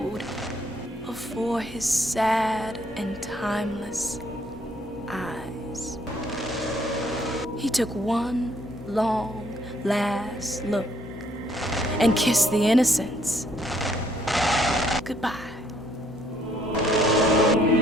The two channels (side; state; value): both; normal; correlation 0.66